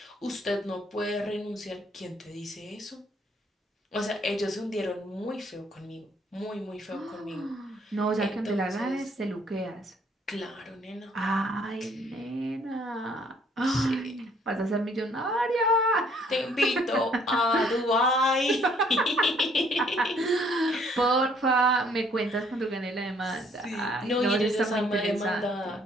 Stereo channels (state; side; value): normal; both; correlation 0.63